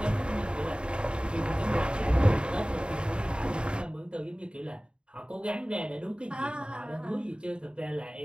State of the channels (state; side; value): late; left; 0.052 ms